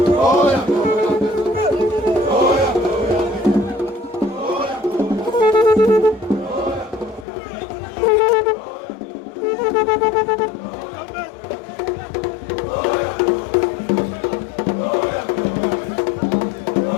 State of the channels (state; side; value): drops out; right; at 7.2 s